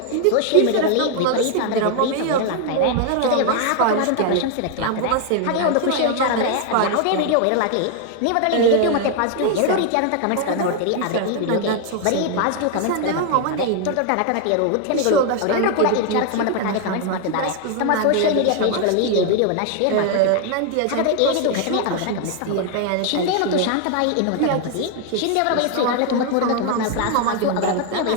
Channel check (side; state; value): both; different; correlation 0.01